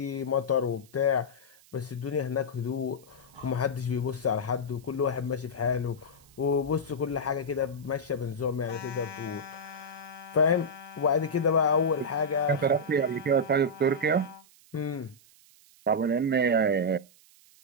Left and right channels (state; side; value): noise; right; hiss, 27 dB below the sound